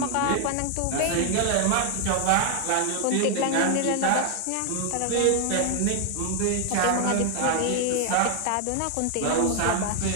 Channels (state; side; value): different; both; correlation 0.00